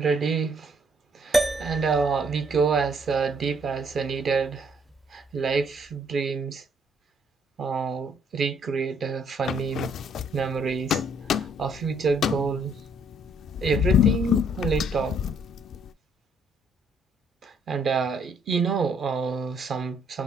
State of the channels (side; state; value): both; normal; correlation 0.66